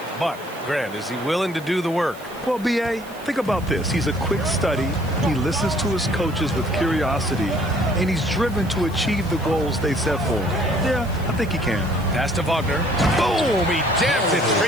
But, Grant, is he willing to do the work? Well, B.A., think about this. He's a quick study. He listens to his coaches with curiosity. And he's driven to achieve the goals they set for him. Yeah, I think he can. Pass to Wagner. Boom! He jams it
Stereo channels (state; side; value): noise; right; hiss, 22 dB below the sound